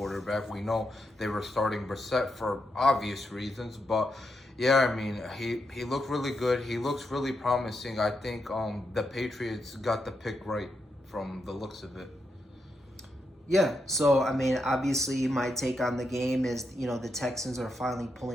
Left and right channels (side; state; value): both; normal; correlation 0.83